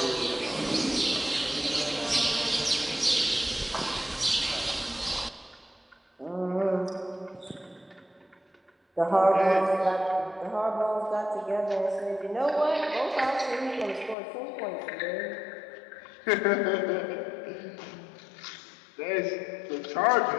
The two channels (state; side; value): drops out; right; at 14.2 s